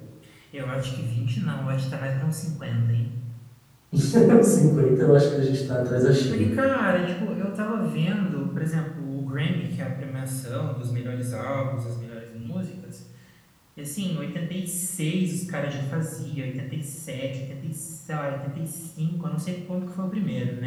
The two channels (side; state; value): both; identical; correlation 1.00